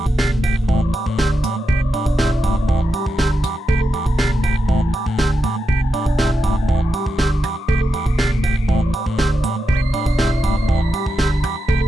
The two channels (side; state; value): both; normal; correlation 0.87